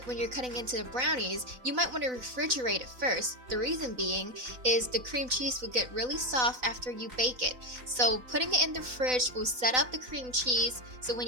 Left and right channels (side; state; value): left; late; 4.0 ms